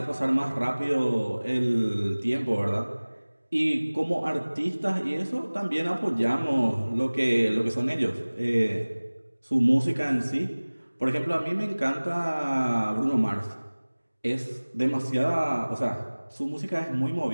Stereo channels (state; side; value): inverted; both; correlation -1.00